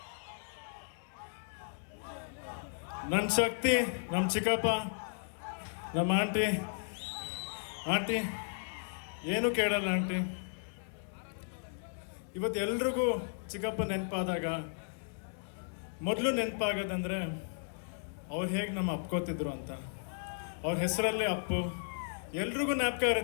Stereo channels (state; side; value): silent; right; digital silence